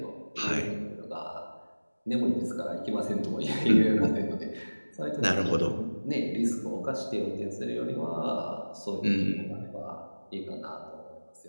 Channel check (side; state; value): both; inverted; correlation -1.00